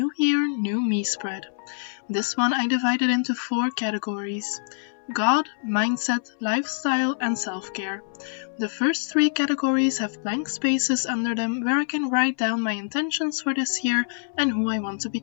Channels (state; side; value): silent; right; 62 dB below the other